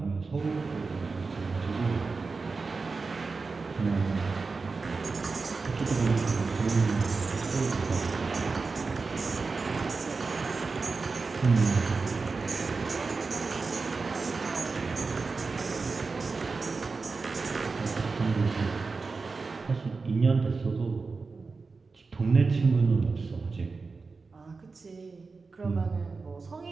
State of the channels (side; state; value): left; quieter; 4.3 dB